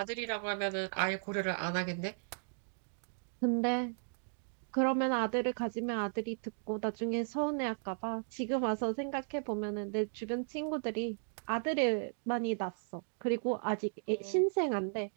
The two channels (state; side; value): silent; left; digital silence